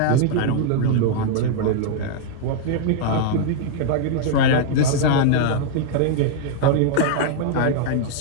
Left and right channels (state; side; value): different; both; correlation -0.01